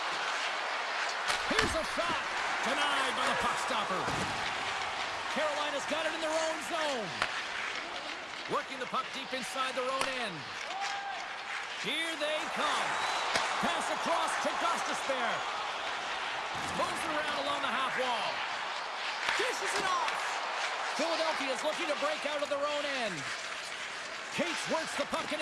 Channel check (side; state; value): both; identical; correlation 1.00